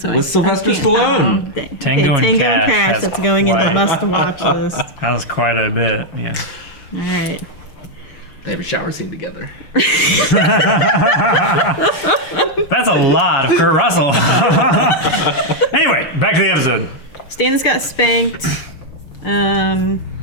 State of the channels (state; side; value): late; right; 6.7 ms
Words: With I Sylvester can't- Stallone. Oh, dang. Tango and Tango Cash has That's going in the quite- must-watch list. That was quite a bit, yeah. All right. They have a shower scene together. That's a lot of Kurt Russell. Anyway, back to the episode. Stannis got spanked. I mean,